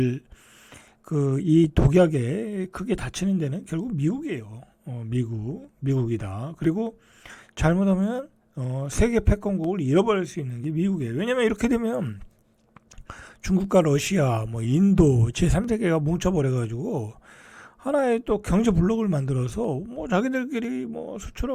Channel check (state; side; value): identical; both; correlation 1.00